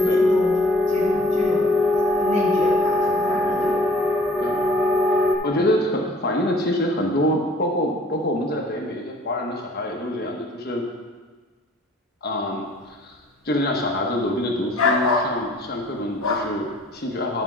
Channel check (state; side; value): normal; both; correlation 0.54